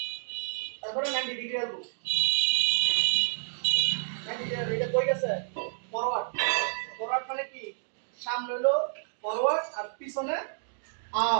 তারপরে 90 ডিগ্রি আসবো 90 ডিগ্রি এটা কই গেছে ফরওয়ার্ড ফরওয়ার্ড মানে কি সামনে হলো ফরওয়ার্ড আর পিছনে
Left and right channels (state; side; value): silent; left; digital silence